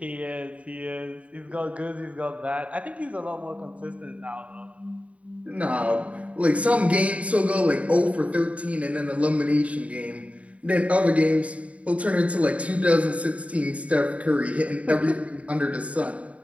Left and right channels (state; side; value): late; left; 0.065 ms